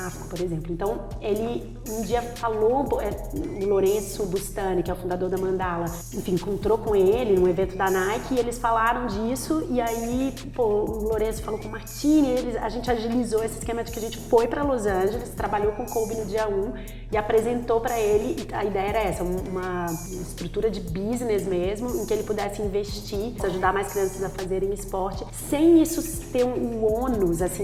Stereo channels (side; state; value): both; identical; correlation 1.00